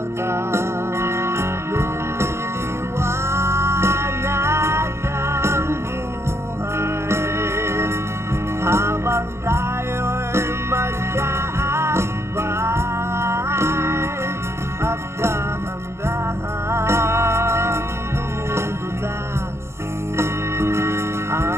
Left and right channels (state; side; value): late; left; 0.13 ms